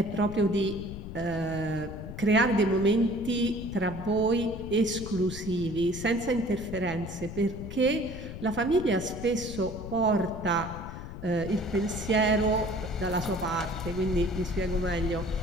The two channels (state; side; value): noise; left; rumble, 10 dB below the sound